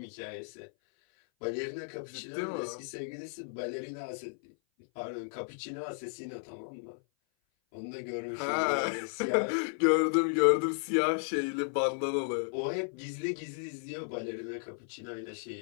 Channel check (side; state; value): right; silent; 55 dB below the other